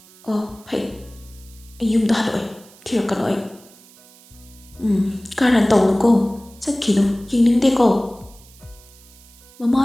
ꯑꯣ, ꯐꯩ, ꯑꯩ ꯌꯨꯝꯗ ꯍꯜꯂꯛꯑꯣꯏ, ꯊꯤꯔꯛꯀꯅꯨ ꯑꯩ꯫ ꯀꯔꯟ ꯇꯧꯅꯨꯀꯣ, ꯆꯠꯈꯤꯅꯨ, ꯌꯦꯡꯅꯤꯡꯗꯦꯀꯣ꯫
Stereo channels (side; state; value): right; noise; hiss, 25 dB below the sound